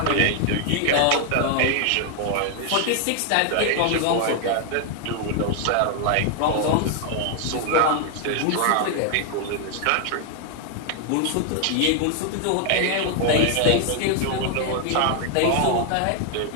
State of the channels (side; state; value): both; different; correlation 0.00